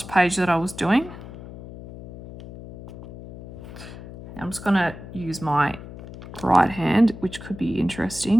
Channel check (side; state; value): left; noise; hum, 14 dB below the sound